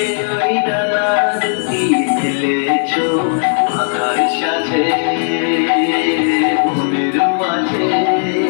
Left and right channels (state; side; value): silent; right; digital silence